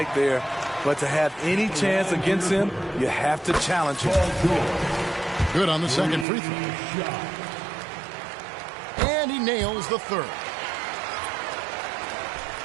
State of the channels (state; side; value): drops out; left; at 6.2 s